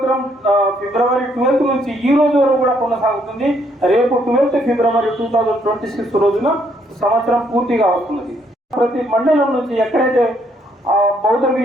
February 12th నుంచి ఈ రోజు వరకు కూడా కొనసాగుతుంది. రేపు 12th February 2026 రోజున సంవత్సరం పూర్తిగా వస్తున్నది. ప్రతి మండలం నుంచి ఎక్కడైతే బౌద్ధ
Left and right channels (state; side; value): normal; both; correlation 0.70